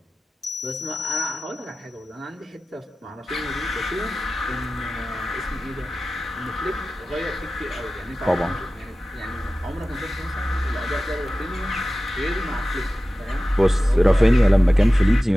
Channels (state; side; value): normal; both; correlation 0.95